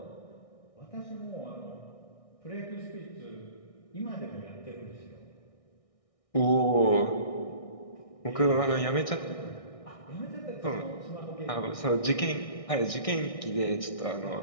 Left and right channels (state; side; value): late; right; 1.6 ms